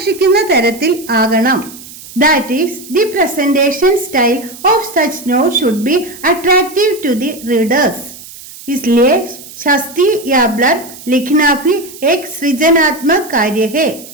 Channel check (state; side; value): noise; right; hiss, 17 dB below the sound